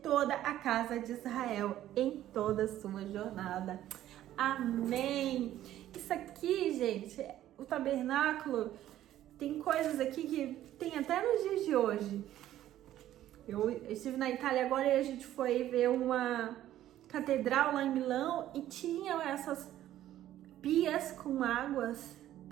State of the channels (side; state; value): left; quieter; 12.9 dB